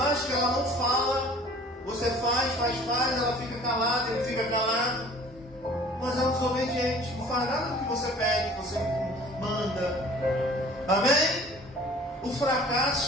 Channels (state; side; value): normal; both; correlation 0.49